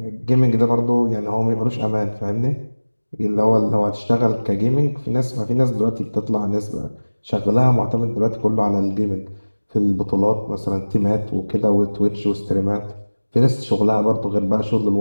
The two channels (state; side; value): inverted; both; correlation -1.00